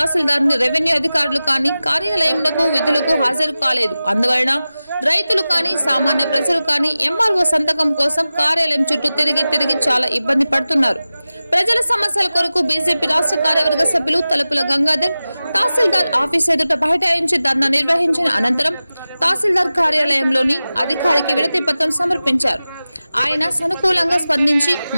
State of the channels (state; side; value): inverted; both; correlation -0.96